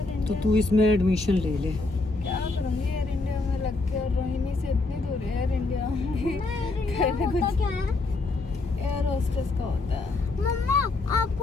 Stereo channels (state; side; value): quieter; right; 3.4 dB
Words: तो तू इसमें एडमिशन ले ले। क्या करूँगी एयर इंडिया में लग के, और रोहिणी से इतनी दूर है एयर इंडिया। क्या है? एयर होस्टेस का होता है। मम्मा